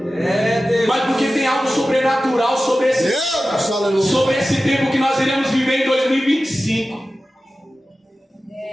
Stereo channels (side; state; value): both; normal; correlation 0.95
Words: Mas porque tem algo sobrenatural sobre esse tempo que nós iremos viver em 2025.